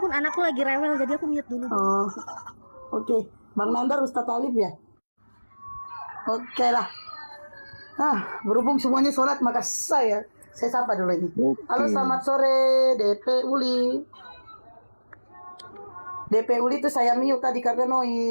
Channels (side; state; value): both; inverted; correlation -1.00